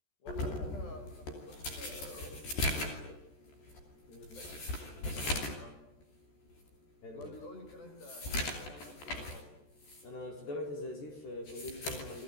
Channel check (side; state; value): right; late; 14 ms